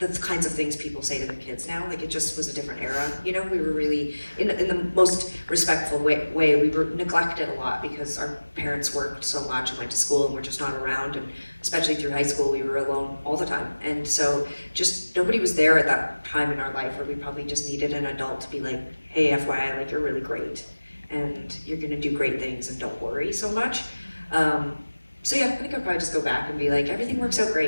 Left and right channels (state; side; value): inverted; both; correlation -1.00